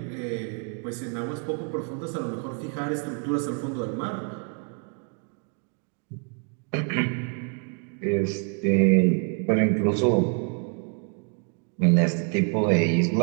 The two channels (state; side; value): quieter; left; 39.8 dB